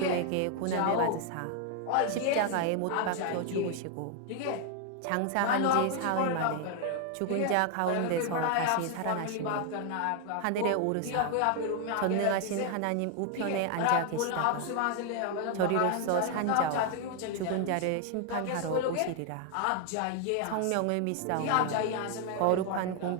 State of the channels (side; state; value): both; different; correlation 0.00